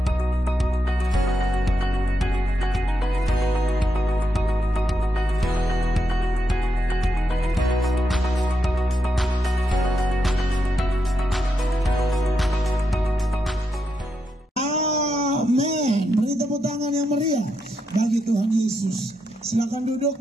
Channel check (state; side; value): normal; both; correlation 0.83